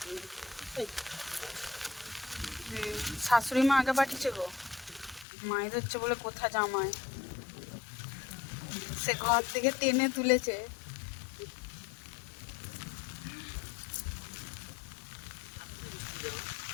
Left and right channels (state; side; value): drops out; right; at 5.2 s